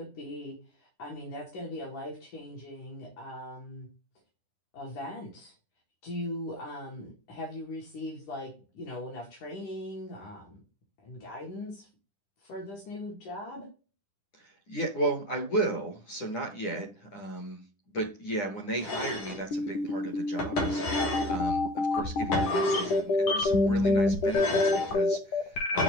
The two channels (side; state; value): right; late; 10 ms